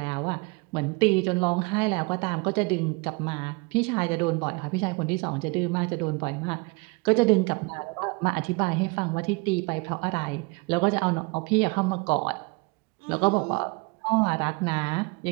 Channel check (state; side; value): quieter; left; 28.5 dB